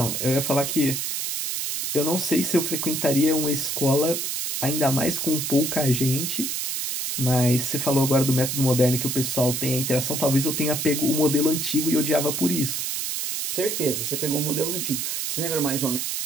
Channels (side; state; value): right; noise; hiss, 2 dB below the sound